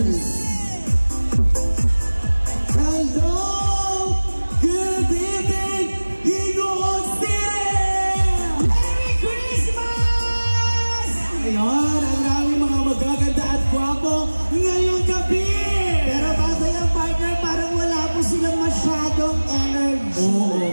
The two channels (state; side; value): inverted; both; correlation -1.00